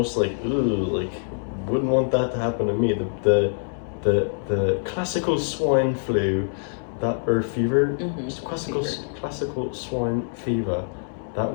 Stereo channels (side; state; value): right; silent; digital silence